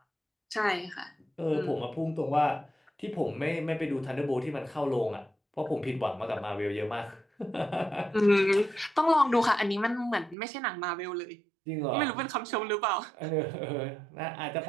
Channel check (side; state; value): left; drops out; at 10.4 s